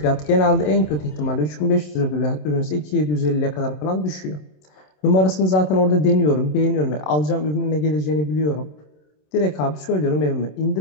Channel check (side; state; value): right; late; 27 ms